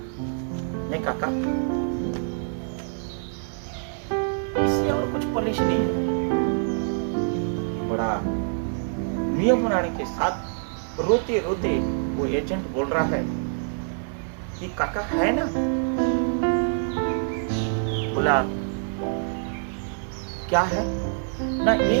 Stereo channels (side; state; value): left; silent; digital silence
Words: नहीं काका, इससे और कुछ पॉलिसी नहीं है। बड़ा नियम बनाने के साथ रोते रोते वो एजेंट बोल रहा है कि काका है ना? बोला क्या है ना?